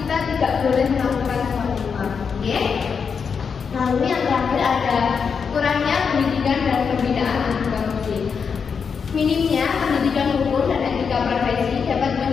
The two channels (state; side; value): quieter; right; 6.1 dB